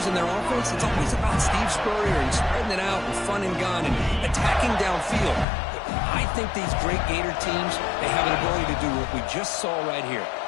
and their offense, it's always about Steve Spurrier and spreading it out and front and gun and attacking downfield. I think these great Gator teams, they have an ability to do what we just saw right here.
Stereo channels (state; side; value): drops out; right; at 5.5 s